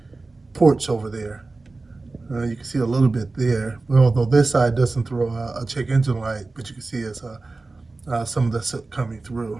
ports over there. You can see a little bit there, although this side doesn't throw a check engine light, but you can see it's some of the soot coming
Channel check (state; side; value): quieter; left; 3.5 dB